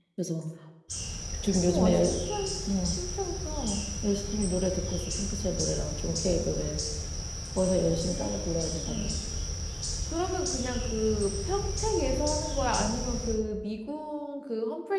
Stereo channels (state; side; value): identical; both; correlation 1.00